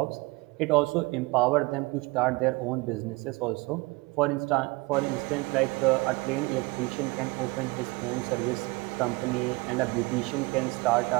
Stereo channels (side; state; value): left; quieter; 24.5 dB